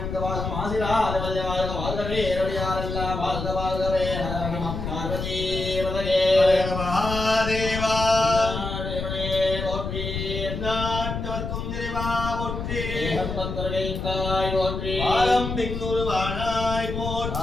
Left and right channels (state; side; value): noise; left; rumble, 5 dB below the sound